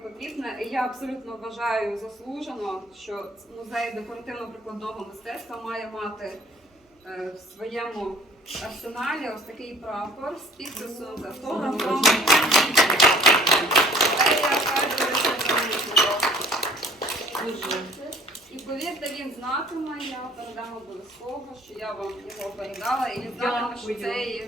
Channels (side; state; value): both; normal; correlation 0.52